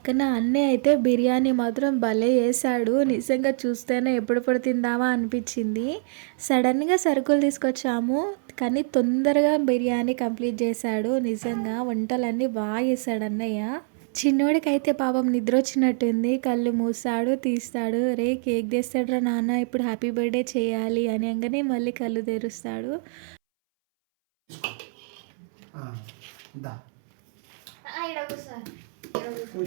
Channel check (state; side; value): silent; left; 62 dB below the other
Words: అన్నయ్య అయితే బిర్యానీ మాత్రం భలే వేసాడు. నిజంగా చూస్తేనే ఎప్పుడెప్పుడు తిందామా అనిపించింది. సడన్గా సరుకులు తీసుకొచ్చాము, కానీ తొందరగా బిర్యానీ కంప్లీట్ చేశాడు. నిజంగా వంటలన్నీ బాగా చేశాడు అన్నయ్య. చిన్నోడికైతే పాపం నిద్ర వచ్చినట్టుంది, కళ్ళు మూసాడు తీస్తాడు. రే కేక్ తెస్తాడురా నాన్న, ఇప్పుడు హ్యాపీ బర్త్డే చేయాలి అని అనగానే మళ్ళీ కళ్ళు తెరుస్తాడు.